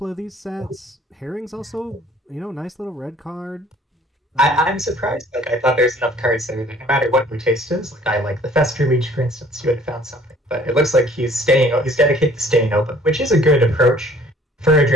of these sets. Herring's also, nice little red card. I'm surprised. Like I thought there's enough cards there that no matter what your taste is, like I like the Fester Leech, for instance, you would have found something. But it looks like he's dedicated to staying open, which is a good approach for a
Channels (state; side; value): normal; both; correlation 0.55